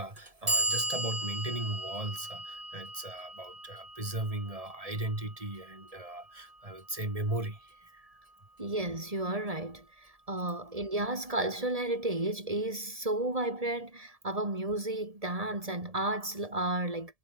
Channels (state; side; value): late; left; 1.7 ms